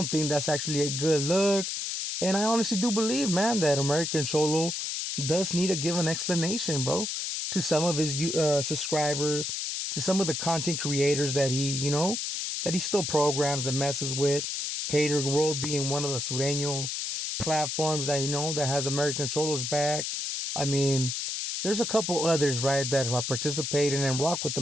think that's actually a good look. And I honestly do believe, man, that American Cholo does need to give an explanation, bro, to some of his subscribers, to some of the content creators that he still programs and messes with. Hater World being one of the Sureño platforms that that has American Cholo's back. I mean, there's a couple others, right, that are participating and rock with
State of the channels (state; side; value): noise; left; hiss, 3 dB below the sound